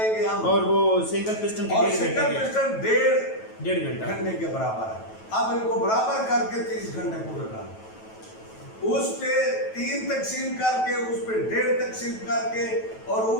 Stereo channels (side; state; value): right; late; 9.2 ms